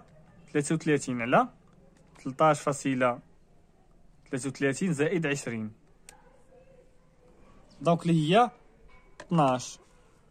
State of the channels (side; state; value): both; identical; correlation 1.00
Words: على 13.33 زائد 20. دونك اللي هي